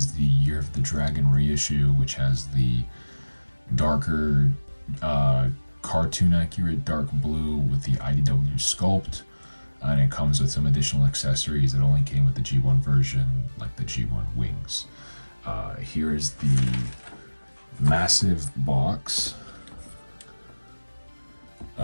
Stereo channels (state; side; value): inverted; both; correlation -1.00